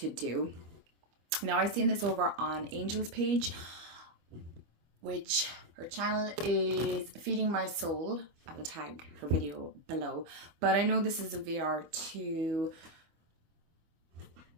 do. Now, I've seen this over on Angel's page, which her channel is Feeding My Soul. I will tag her video below, but I know this is a VR to,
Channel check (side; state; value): left; late; 25 ms